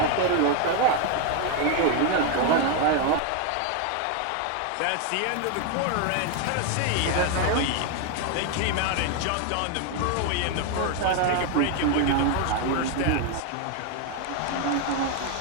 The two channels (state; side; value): different; both; correlation 0.01